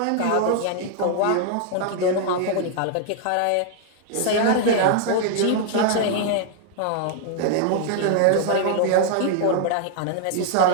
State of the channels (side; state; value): both; different; correlation 0.00